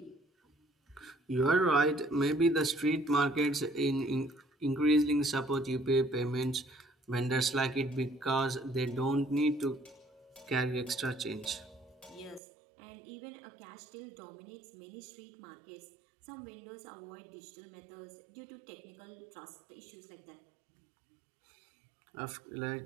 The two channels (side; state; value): left; drops out; at 12.4 s